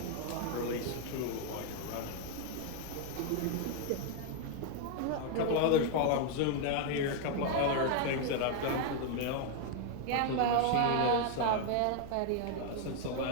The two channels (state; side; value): different; both; correlation 0.00